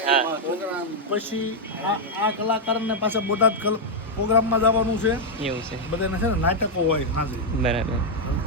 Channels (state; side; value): normal; both; correlation -0.02